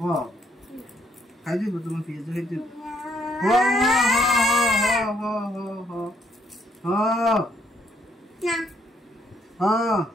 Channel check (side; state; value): both; normal; correlation 0.70